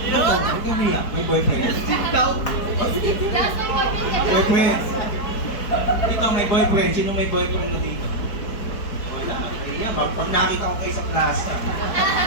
Huwag kang umiyak, may boyfriend. Boyfriend. Dito may boyfriend. Sino may boyfriend na dito? Wala. Iya, pag nakita ko kayo sa plaza.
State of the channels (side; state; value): right; late; 4.5 ms